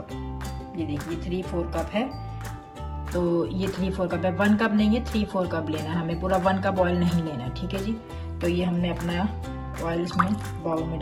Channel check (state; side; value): identical; both; correlation 1.00